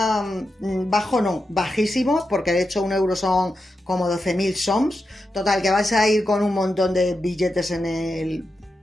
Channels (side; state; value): both; normal; correlation 0.88